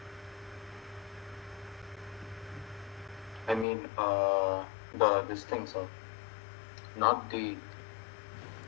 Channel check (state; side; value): drops out; right; at 3.7 s